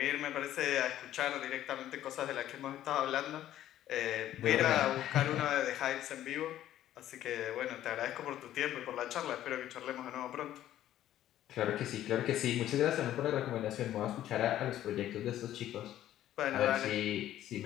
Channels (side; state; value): right; quieter; 12.6 dB